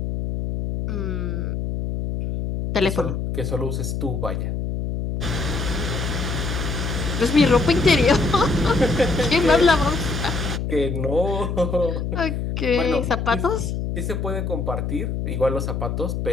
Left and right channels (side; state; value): left; noise; hum, 3 dB below the sound